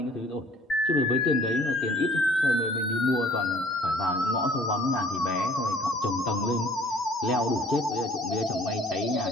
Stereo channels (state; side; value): normal; both; correlation 0.54